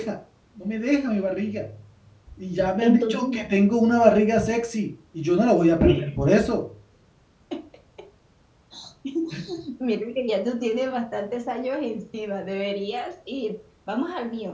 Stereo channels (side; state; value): both; identical; correlation 1.00